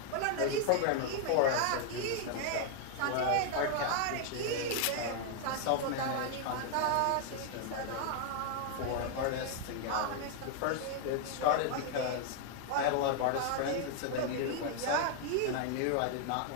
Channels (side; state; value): both; different; correlation 0.00